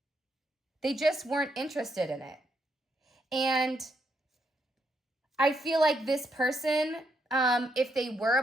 They just weren't interested in it. And I feel like this person, if they were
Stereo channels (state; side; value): normal; both; correlation 0.78